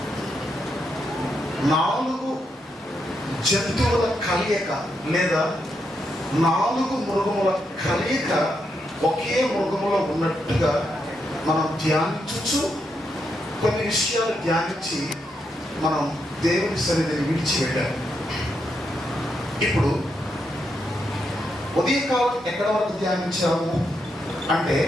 4 జంతువుల కలయిక లేదా 4 మృగముల కలయిక ఒకే మృగములో ఉన్నట్టుగా మనం ధ్యానించు కొన్ని విషయాలు ధ్యానించి మనం దేవుని సన్నిధిని విడిచిపెట్టాలి. ఇప్పుడు ఉదయకాలం ఎక్కడ వరకు ధ్యానించాము అంటే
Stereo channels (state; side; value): normal; both; correlation 0.81